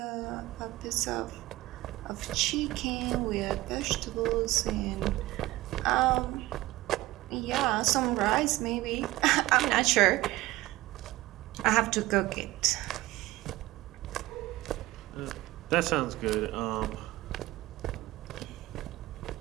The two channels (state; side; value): quieter; left; 17.9 dB